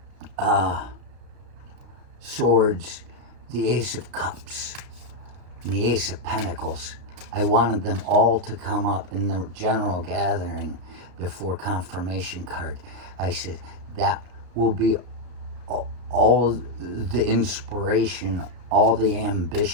swords, the ace of cups, and the ace of pentacles. I wanted them all to come up in the general gathering before confirmation card. I said, that will be all the inspiration, all the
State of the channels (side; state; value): left; late; 33 ms